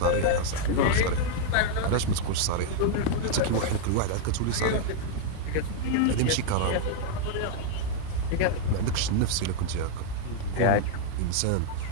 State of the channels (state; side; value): different; both; correlation -0.01